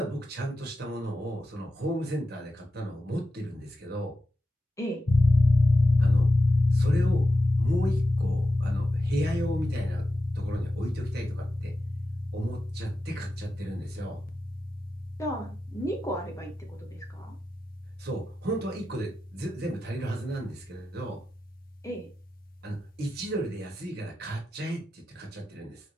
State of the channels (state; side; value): normal; both; correlation 0.92